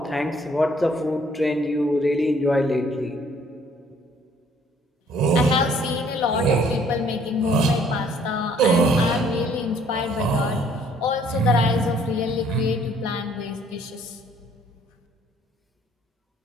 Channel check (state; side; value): normal; both; correlation 0.61